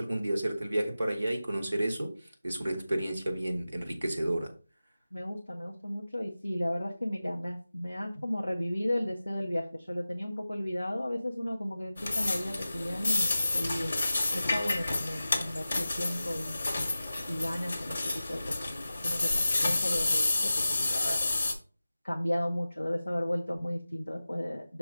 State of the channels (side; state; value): both; inverted; correlation -0.96